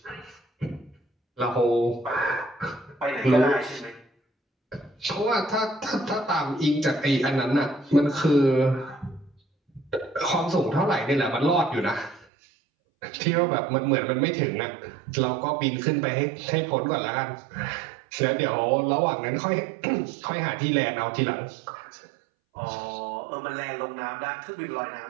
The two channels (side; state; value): left; drops out; at 12.2 s